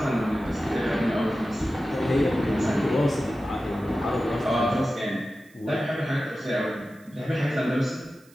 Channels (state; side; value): noise; right; hiss, 29 dB below the sound